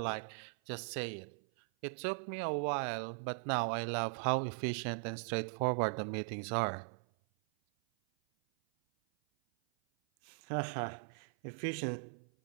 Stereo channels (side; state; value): left; silent; 52 dB below the other